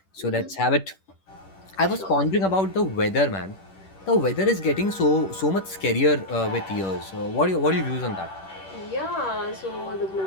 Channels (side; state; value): right; late; 10 ms